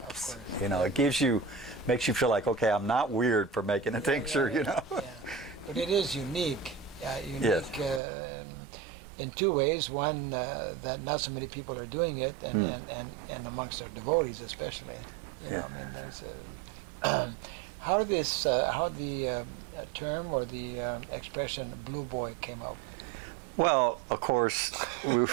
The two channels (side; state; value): left; drops out; at 8.0 s